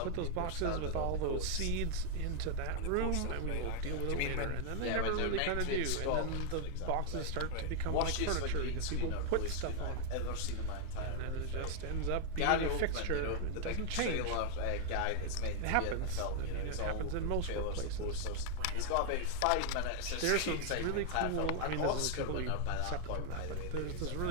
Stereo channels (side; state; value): both; different; correlation 0.00